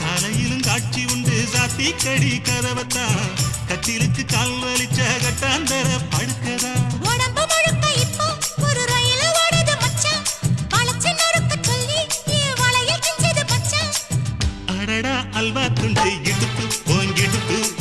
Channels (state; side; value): identical; both; correlation 1.00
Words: காலையிலும் காட்சி உண்டு சாத்தி கடி கதவத்தான் கட்டிலுக்கு கால் வலிச்ச கட்டாந்தர படுக்கதா. உடம்பு முழுக்க இப்போ ஒரு ரயில் ஓடுது மச்சான். வளைச்சு நொறுக்க சொல்லி என் வளையல் கிஞ்சது மச்சான். அடடா அல்வா துண்டு இடுப்பு போங்கிடுப்பு